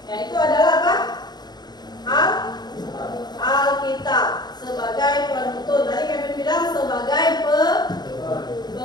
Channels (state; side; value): late; right; 0.20 ms